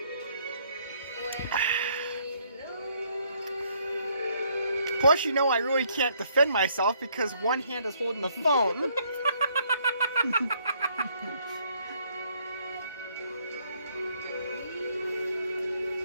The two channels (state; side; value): inverted; both; correlation -0.68